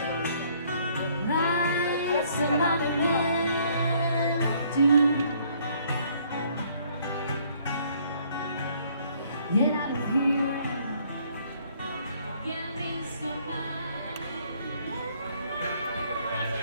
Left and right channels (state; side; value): inverted; both; correlation -0.63